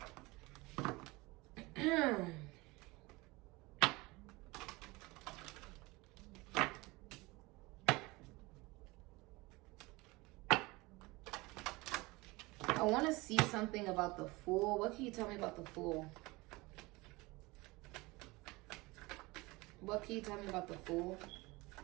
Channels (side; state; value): left; quieter; 22.8 dB